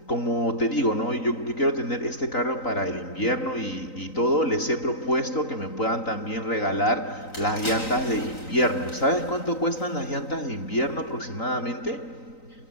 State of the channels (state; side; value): late; right; 3.9 ms